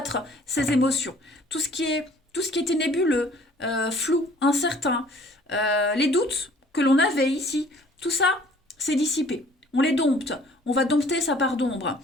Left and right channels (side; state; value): both; normal; correlation 0.55